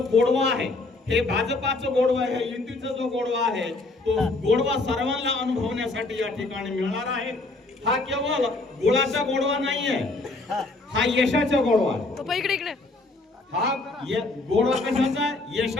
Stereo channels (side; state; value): right; quieter; 3.2 dB